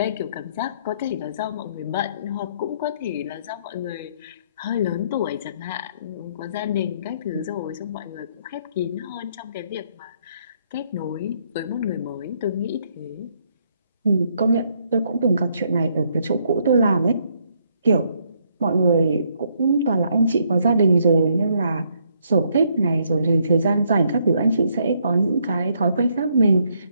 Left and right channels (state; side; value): inverted; both; correlation -0.72